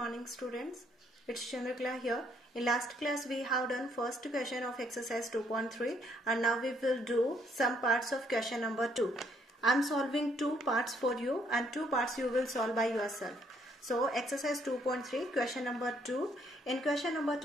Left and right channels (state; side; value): normal; both; correlation 0.69